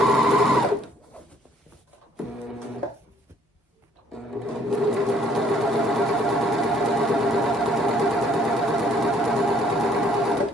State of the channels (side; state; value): both; normal; correlation 0.62